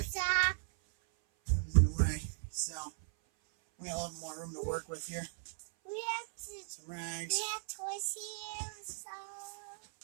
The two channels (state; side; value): silent; left; 53 dB below the other